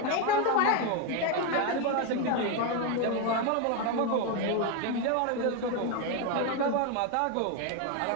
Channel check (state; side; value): different; both; correlation 0.02